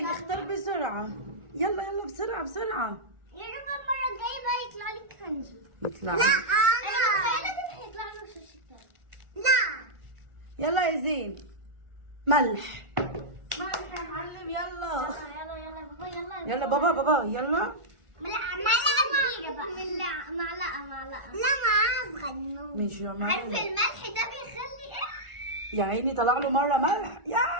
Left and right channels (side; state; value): left; late; 1.4 ms